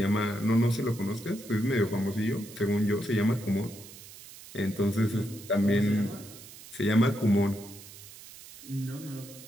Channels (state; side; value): noise; right; hiss, 17 dB below the sound